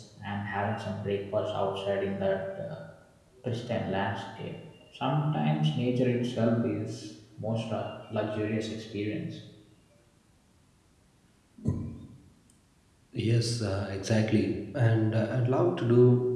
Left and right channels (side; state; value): both; identical; correlation 1.00